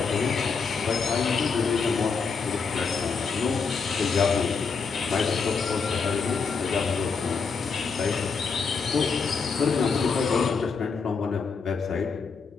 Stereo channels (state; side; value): quieter; right; 5.2 dB